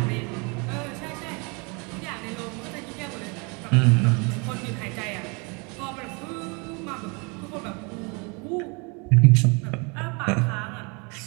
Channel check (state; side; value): quieter; left; 31.4 dB